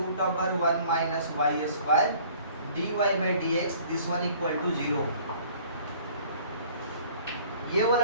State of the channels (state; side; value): inverted; both; correlation -0.53